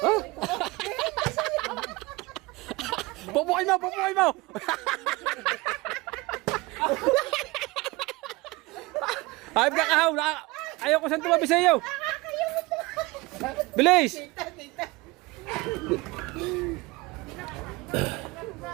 Pupukin mo! Hayop ka kahaw! Ayaw ko saan tumabi sa iyo! Bilis!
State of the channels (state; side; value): quieter; left; 22.6 dB